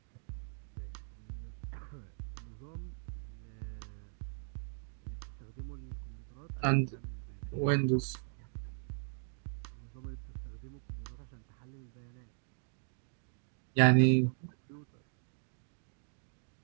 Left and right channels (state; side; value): silent; left; digital silence